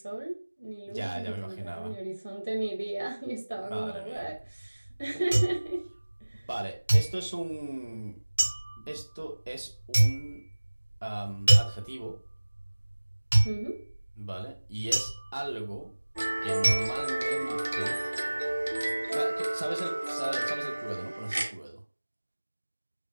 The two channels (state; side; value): inverted; both; correlation -1.00